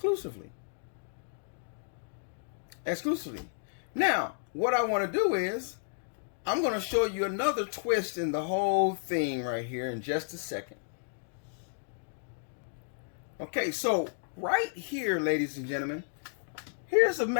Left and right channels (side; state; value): right; silent; digital silence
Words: Now, what I want to do is, I'm going to show you another twist in the whole thing right here in just a second. Okay, so right here, ladies and gentlemen, here's a